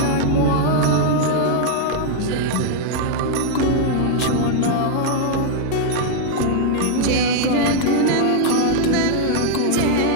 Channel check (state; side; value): different; both; correlation -0.01